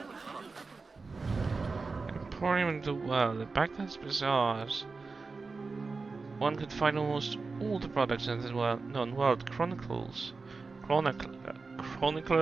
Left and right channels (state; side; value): quieter; left; 4.2 dB